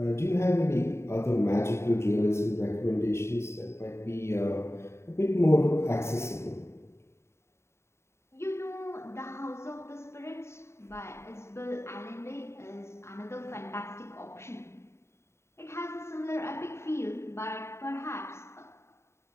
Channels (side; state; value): right; late; 0.13 ms